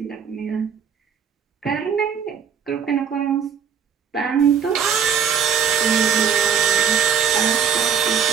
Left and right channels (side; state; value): left; quieter; 7.5 dB